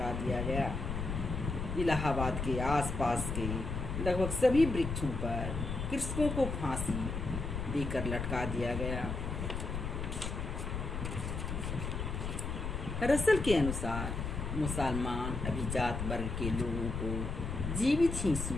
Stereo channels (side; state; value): left; noise; rumble, 3 dB below the sound